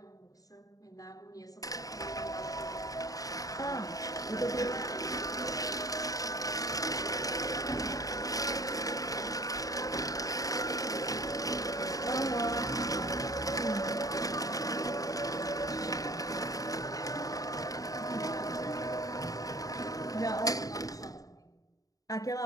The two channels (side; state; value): right; late; 0.17 ms